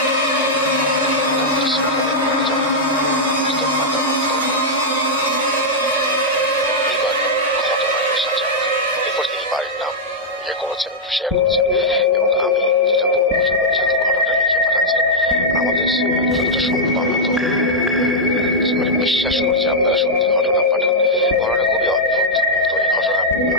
শেয়ার করছেন এবং আমি যেটা বলবো যেহেতু ঘটনাটা লিখে পাঠাচ্ছেন আমাদের যতটা সম্ভব আমরা তো মানে বিশ্বাস করছি আপনারা সত্যি ঘটনা পাঠান। ঘটনা খুবই অদ্ভুত। তো এই ঘটনা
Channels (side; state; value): both; normal; correlation -0.05